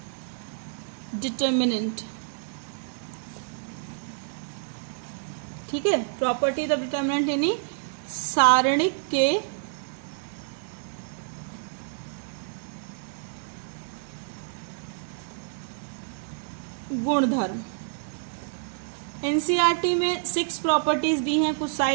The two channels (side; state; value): left; silent; digital silence